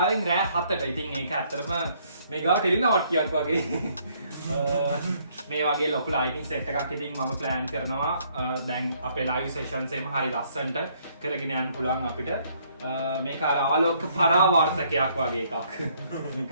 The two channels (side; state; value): both; inverted; correlation -0.66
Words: රෑ 7ට. ඉතින් ඒක ඇත්තටම මේ ගාව ටෙලිනාට්‍යයක් වගේ. මේ වගේ ලොකු ලයිටිං සෙට් එකක් ඉතින් මම ප්ලෑන් කරනවා දැන් අපේ ලයිව් සෙෂන්ස් එකම හරි ලස්සනට කරගෙන යන්න පුළුවන් අපිට. මේක අර ආලෝක පරාවර්තකයක් වගේ එකක්.